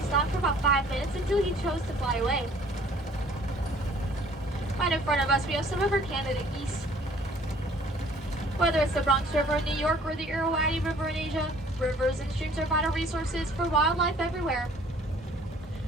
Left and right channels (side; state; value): both; normal; correlation 0.55